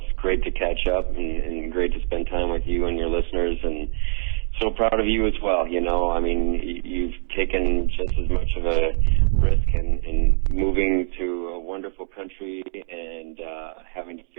great to catch up and great to spend time with you and your listeners, and so proud of you as well. You've taken just as much of a risk in moving to a wonderful country and having to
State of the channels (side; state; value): left; silent; 63 dB below the other